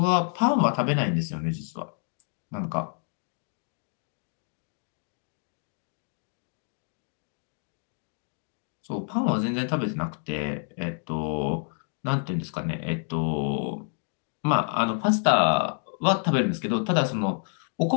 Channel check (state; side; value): silent; right; 59 dB below the other